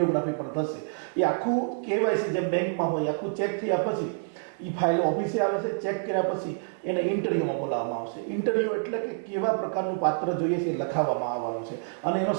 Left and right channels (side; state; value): left; silent; digital silence